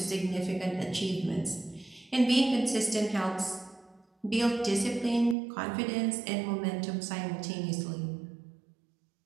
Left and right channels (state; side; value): drops out; left; at 5.4 s